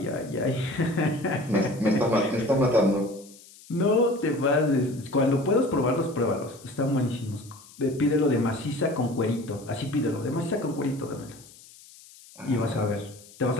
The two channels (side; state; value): left; noise; hiss, 22 dB below the sound